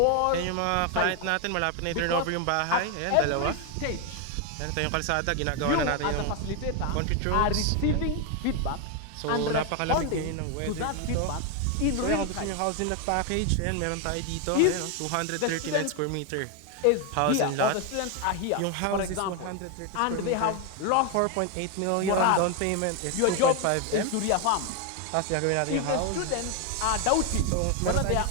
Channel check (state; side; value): different; both; correlation 0.01